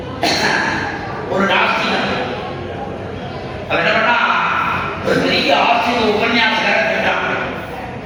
ஒரு நாஸ்திகன் அவர் என்ன பண்ணா, ஒரு பெரிய ஆஸ்திக உபன்யாசகரை கேட்டான்.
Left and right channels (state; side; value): identical; both; correlation 1.00